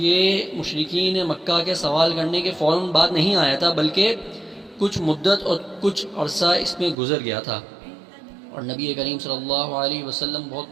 مشرکین مکہ کے سوال کرنے کے فوراً بعد نہیں آیا تھا، بلکہ کچھ مدت اور کچھ عرصہ اس میں گزر گیا تھا، اور نبی کریم صلی اللہ علیہ وسلم بہت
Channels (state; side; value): drops out; left; at 7.0 s